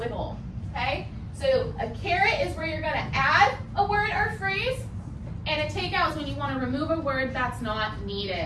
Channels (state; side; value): identical; both; correlation 1.00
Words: okay? So a carrot is where you're going to add a word or phrase, and a take out is when you want to remove a word that's not